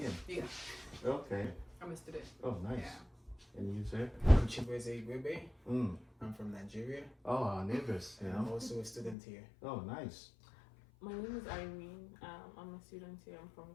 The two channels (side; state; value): right; drops out; at 9.2 s